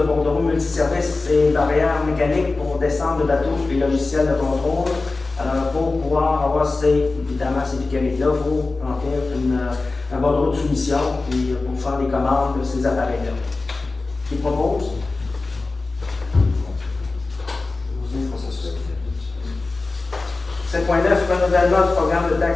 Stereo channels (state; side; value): quieter; right; 3.5 dB